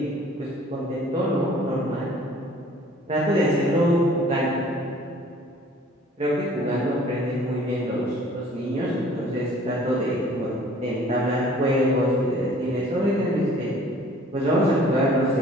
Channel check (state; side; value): normal; both; correlation 0.52